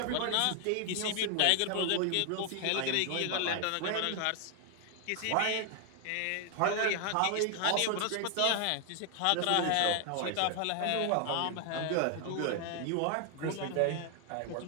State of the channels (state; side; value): different; both; correlation 0.00